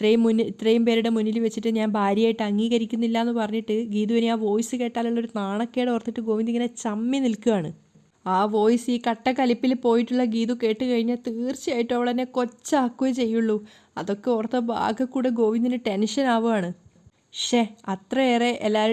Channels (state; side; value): identical; both; correlation 1.00